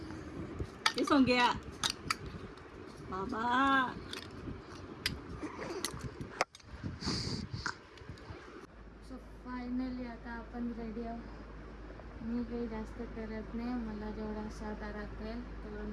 हे सोंग्या बाबा. सो फायनली आता आपण रेडी आहोत. मी काही जास्त करत नाही, मला जेवढा साधा राखेल तेवढं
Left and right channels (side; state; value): both; identical; correlation 1.00